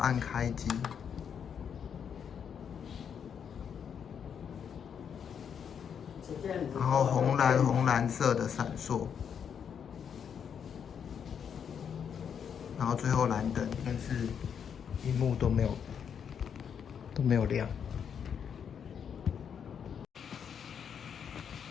开机，然后红蓝色的闪烁，然后最后蓝灯，但是屏幕都没有亮。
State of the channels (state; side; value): quieter; right; 7.6 dB